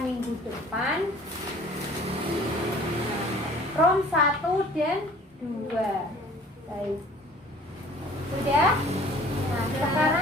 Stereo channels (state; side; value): normal; both; correlation 0.50